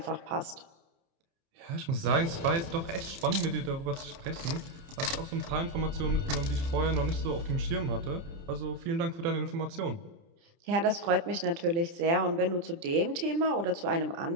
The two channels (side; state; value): left; late; 30 ms